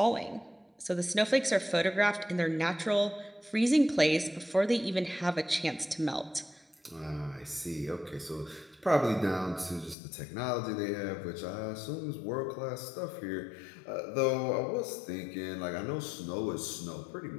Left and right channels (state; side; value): drops out; right; at 10.0 s